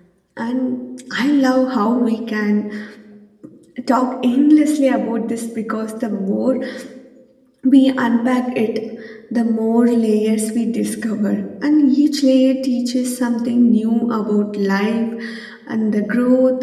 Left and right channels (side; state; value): both; identical; correlation 1.00